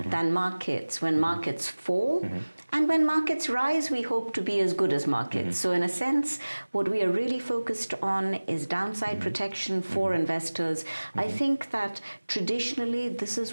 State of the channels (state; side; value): inverted; both; correlation -1.00